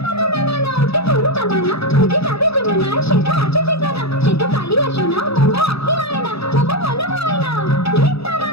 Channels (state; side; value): late; right; 0.78 ms